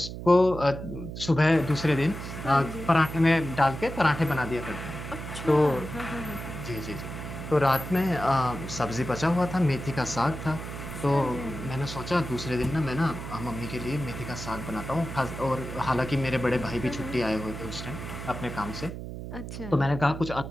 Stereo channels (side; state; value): right; noise; hum, 9 dB below the sound